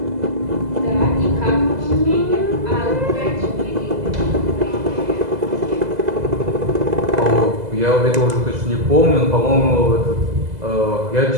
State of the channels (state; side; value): late; left; 2.0 ms